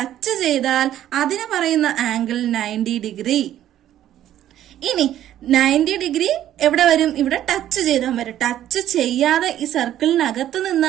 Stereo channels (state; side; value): quieter; left; 12.0 dB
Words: ചെയ്താൽ അതിന് പറയുന്ന ആംഗിൾ 90 ഡിഗ്രി. ഇനി 90 ഡിഗ്രി എവിടെ വരും? ഇവിടെ ടച്ച് ചെയ്താൽ വരും. ടച്ച് ചെയ്യാതെ ഈ സർക്കിളിനകത്ത്